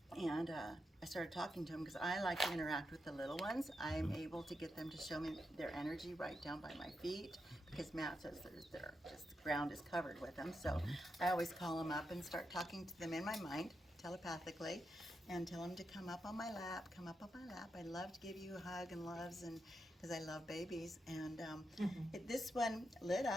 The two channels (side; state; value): both; normal; correlation 0.85